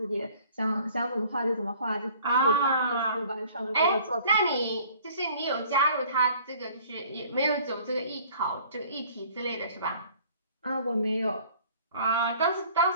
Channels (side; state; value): both; inverted; correlation -0.53